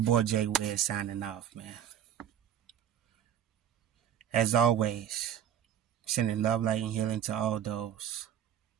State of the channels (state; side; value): quieter; left; 9.7 dB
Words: boy Jay Wiz signing off, man. As always, sending love, light, and healing to all those.